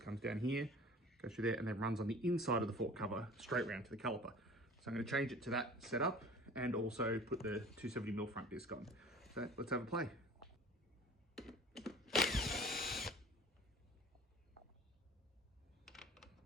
down here, goes through there, and then runs on the inside of the fork cover straight round to the caliper. So I'm going to change it to that setup and also put the 270mm front disc on. So let's have a play.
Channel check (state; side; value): normal; both; correlation 0.44